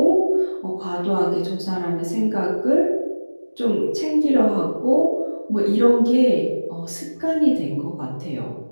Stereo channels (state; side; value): inverted; both; correlation -1.00